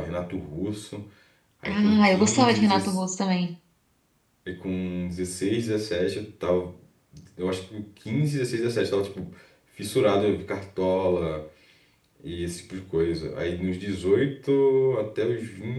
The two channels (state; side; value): identical; both; correlation 1.00